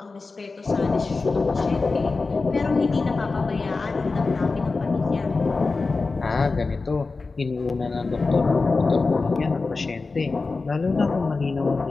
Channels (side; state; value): right; quieter; 3.9 dB